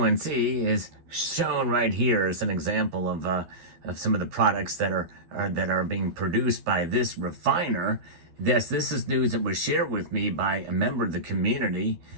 is shown right here as an example of some of the products that are being produced by this refiner. This is news that was shared with me by a member of the community.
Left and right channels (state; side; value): late; left; 12 ms